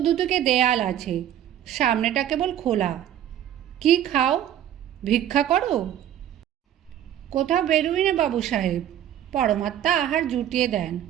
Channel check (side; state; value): left; quieter; 10.9 dB